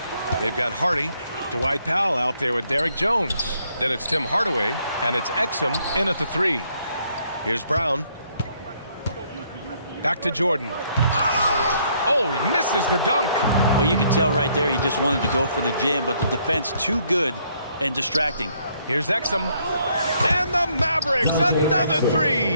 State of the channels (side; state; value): both; inverted; correlation -0.69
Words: they've got Hardy, Dwight Powell out there with Derrick Jones. Then it's Tim Hardaway, and it's Exum in at the 3. Here's Brown. Back to Jordan. Oh, he misses the dunk. Oh, you can tell right there he just wanted to go for the jam, but the defense too good and distracting. Here's Exum. And the Mavericks, another